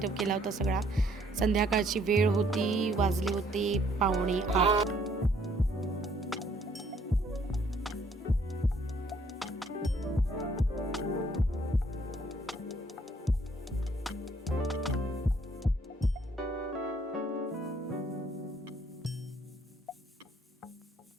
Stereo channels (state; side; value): normal; both; correlation 0.64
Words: केला होता सगळा. संध्याकाळची वेळ होती, वाजले होते 7:45.